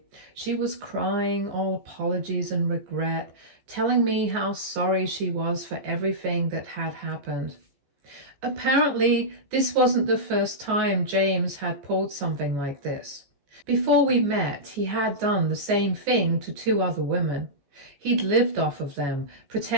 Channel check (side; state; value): left; late; 14 ms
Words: She was crying all apologies and regret, telling me how sorry she was for everything that had happened. Apparently, this wasn't the first time James had pulled something like this. Before we met, he had done the same thing to 2 other women. He'd lived off of them,